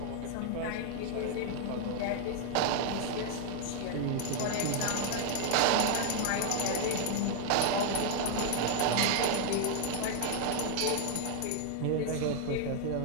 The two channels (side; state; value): both; different; correlation 0.00